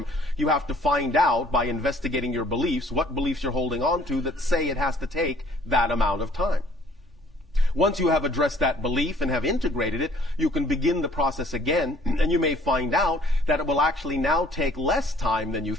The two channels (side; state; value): both; normal; correlation 0.57